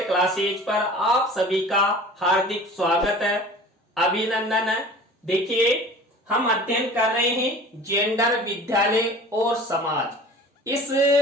क्लासेज पर आप सभी का हार्दिक स्वागत है, अभिनंदन है। देखिए, हम अध्ययन कर रहे हैं जेंडर, विद्यालय और समाज। इस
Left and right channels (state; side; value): normal; both; correlation 0.42